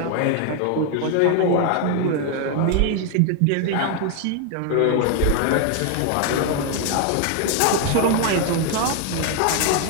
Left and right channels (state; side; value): different; both; correlation 0.01